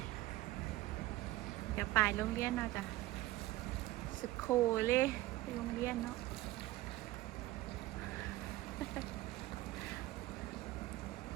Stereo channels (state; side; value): quieter; left; 17.3 dB